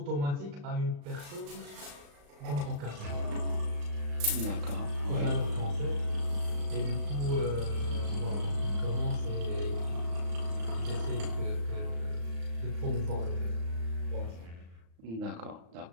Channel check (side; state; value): left; late; 35 ms